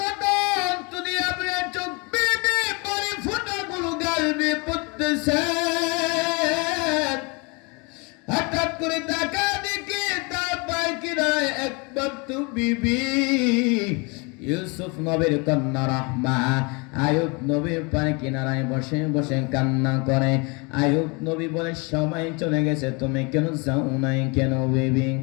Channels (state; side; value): quieter; right; 29.8 dB